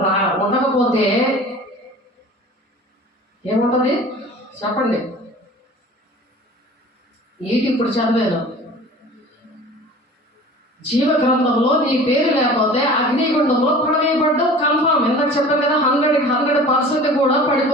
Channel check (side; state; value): both; normal; correlation 0.42